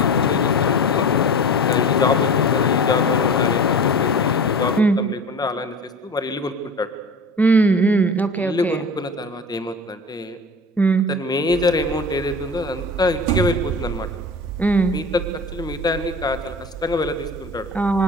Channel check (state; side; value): normal; both; correlation 0.35